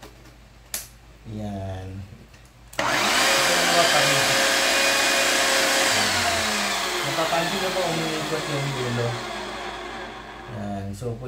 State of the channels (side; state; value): both; identical; correlation 1.00